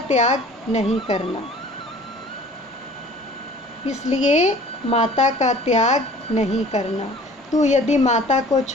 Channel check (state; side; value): normal; both; correlation 0.48